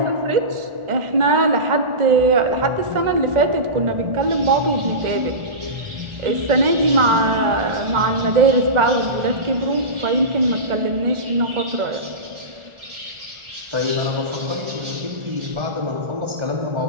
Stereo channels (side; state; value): left; late; 1.4 ms